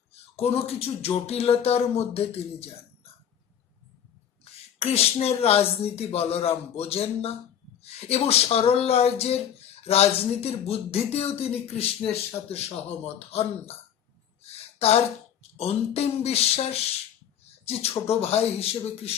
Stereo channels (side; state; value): right; quieter; 9.2 dB